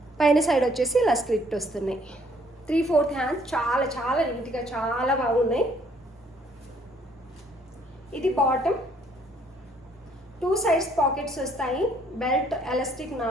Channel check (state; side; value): normal; both; correlation 0.64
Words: సైడ్ వచ్చేసి ఇలా స్లిట్ వస్తున్నాయి. 3/4 హ్యాండ్స్. చాలా చాలా నీట్గా చాలా బాగున్నాయి. ఇది బాటమ్. 2 సైడ్స్ పాకెట్స్ వస్తాయి. బెల్ట్, ఎలాస్టిక్,